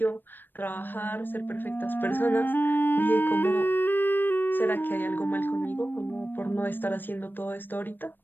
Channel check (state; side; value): late; right; 0.093 ms